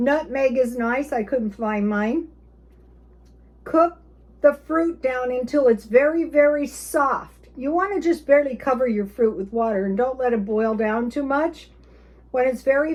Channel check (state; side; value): identical; both; correlation 1.00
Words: is nice. I couldn't find mine. Cook the fruit down until it's very, very soft. You want to just barely cover your fruit with water and don't let it boil down too much. When it's